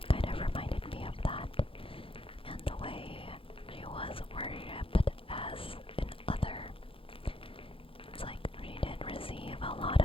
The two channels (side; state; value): right; late; 0.26 ms